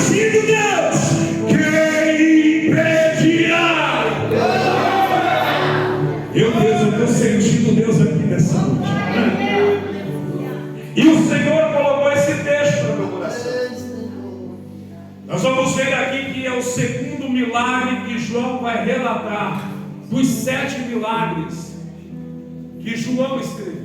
de Deus, quem impedirá? Eu estou sentindo Deus aqui nessa noite. E o Senhor colocou esse texto no meu coração. Nós vamos ver aqui que é o segundo milagre que João vai relatar, dos 7 milagres que João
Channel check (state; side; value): identical; both; correlation 1.00